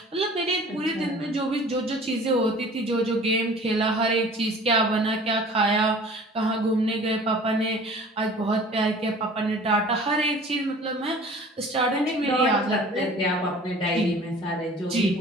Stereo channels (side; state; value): both; normal; correlation 0.46